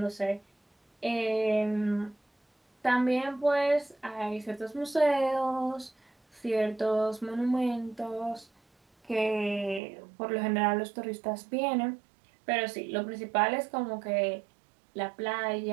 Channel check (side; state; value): left; drops out; at 9.8 s